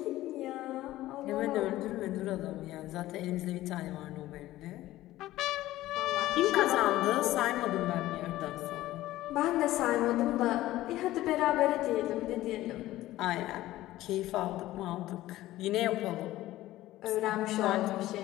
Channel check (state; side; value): quieter; right; 15.7 dB